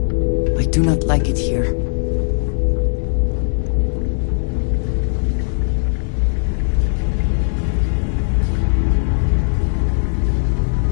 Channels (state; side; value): silent; right; digital silence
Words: do not like it here.